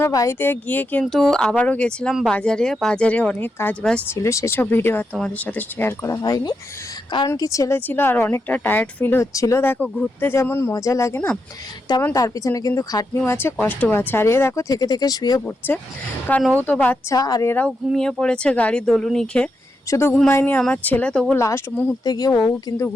বাড়িতে গিয়ে কিন্তু আবারও গেছিলাম বাজারে অনেক কাজবাজ ছিল, সেসব ভিডিও আর তোমাদের সাথে শেয়ার করা হয়নি, কারণ কি ছেলে ছিল আর অনেকটা টায়ার্ড ফিল হচ্ছিল। দেখো, ঘুরতে যেমন মজা লাগে না, তেমন তার পিছনে কিন্তু খাটনিও আছে, কষ্টও আছে। আর এ দেখো থেকে থেকে শুয়ে পড়ছে, কারণ ও তো বাচ্চা আর এরাও ঘুমিয়ে পড়েছে গাড়ির দোলুনি খেয়ে। শুধু ঘুমায়নি আমার ছেলে, তবু লাস্ট মুহূর্তে গিয়ে ও কিন্তু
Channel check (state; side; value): normal; both; correlation 0.84